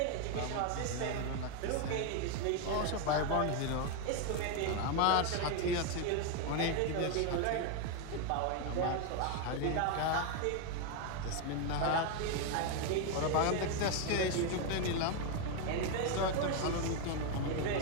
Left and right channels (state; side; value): different; both; correlation 0.01